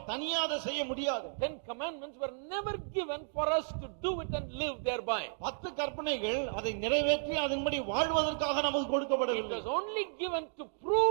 தனியாக அதை செய்ய முடியாது. 10 commandments were never given for us to do it and live thereby. 10 கற்பனைகள் அதை நிறைவேற்றி அதன்படி வாழ்வதற்காக நமக்கு கொடுக்கப்படவில்லை. It was only given to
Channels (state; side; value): silent; left; digital silence